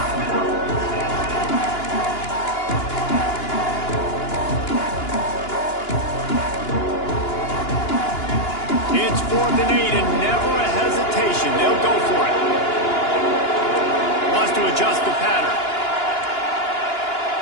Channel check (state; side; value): late; right; 2.9 ms